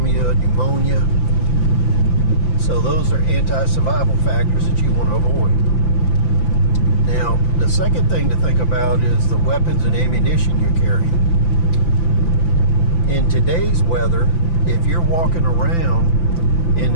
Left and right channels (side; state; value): right; late; 5.9 ms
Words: pneumonia. So those are anti-survival factors that you want to avoid. Now, the second thing to think about is the weapons and ammunition you're carrying. In today's weather, if you're walking around in